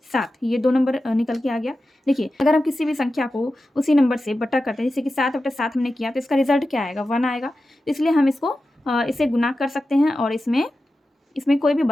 7, ये 2 नंबर निकल के आ गया। देखिए अगर हम किसी भी संख्या को उसी नंबर से बटा करते हैं, जैसे कि 7 बटा 7 हमने किया, तो इसका रिजल्ट क्या आएगा, 1 आएगा। इसलिए हम इसको इसे गुना कर सकते हैं और इसमें कोई भी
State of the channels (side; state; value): both; normal; correlation 0.93